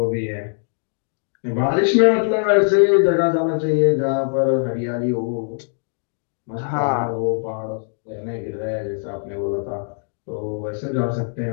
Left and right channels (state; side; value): silent; right; 58 dB below the other